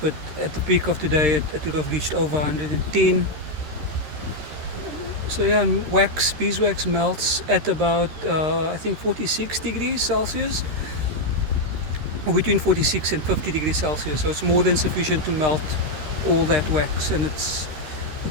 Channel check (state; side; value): late; left; 13 ms